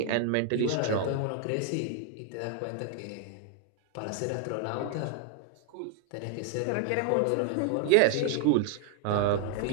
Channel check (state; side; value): different; both; correlation 0.00